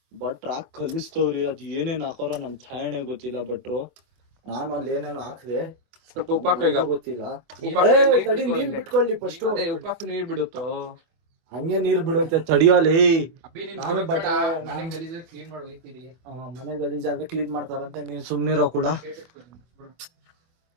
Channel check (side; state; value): left; late; 24 ms